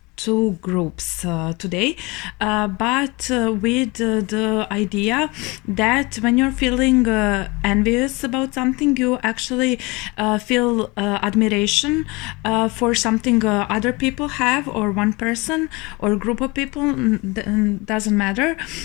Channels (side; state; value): right; quieter; 25.3 dB